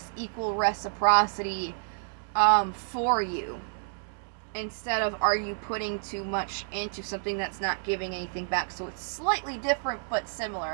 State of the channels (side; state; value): left; silent; 58 dB below the other